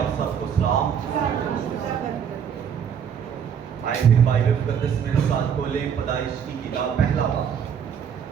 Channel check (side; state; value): left; quieter; 7.8 dB